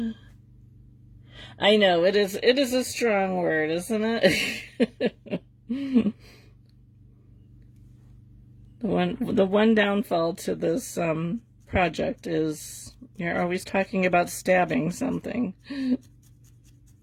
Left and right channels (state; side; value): identical; both; correlation 1.00